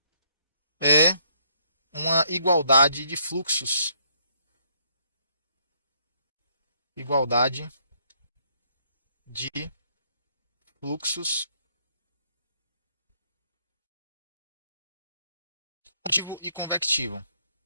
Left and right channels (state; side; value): inverted; both; correlation -0.69